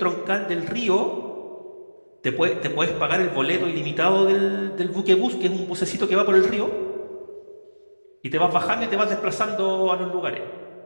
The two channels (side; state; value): both; inverted; correlation -1.00